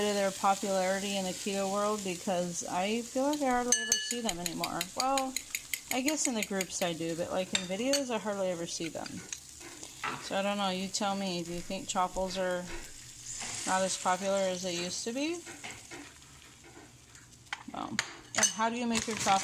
of their popularity in the keto world, because I feel like I hardly ever see them anymore. Well, I guess in the groups I do, but like in videos I hardly ever see them. So I don't know, you tell me, do you think Chaffles are not as popular as they used to be? Well, and how do you make your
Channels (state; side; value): identical; both; correlation 1.00